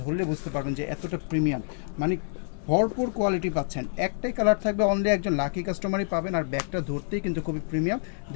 ধরলে বুঝতে পারবেন যে এতটা প্রিমিয়াম, মানে ভরপুর কোয়ালিটি পাচ্ছেন। একটাই কালার থাকবে, অনলি একজন লাকি কাস্টমারই পাবেন। আর ব্যাগটা ধরতেই কিন্তু খুবই প্রিমিয়াম,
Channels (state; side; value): silent; right; 57 dB below the other